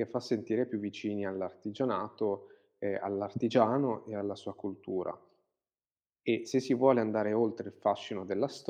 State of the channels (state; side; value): identical; both; correlation 1.00